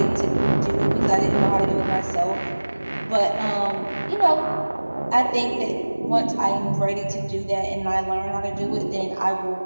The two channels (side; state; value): both; inverted; correlation -1.00